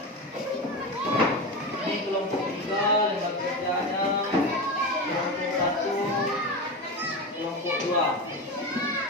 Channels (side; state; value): both; normal; correlation 0.21